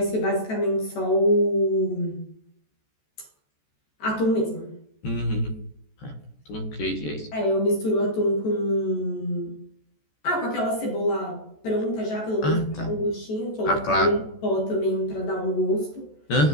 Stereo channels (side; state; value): right; late; 14 ms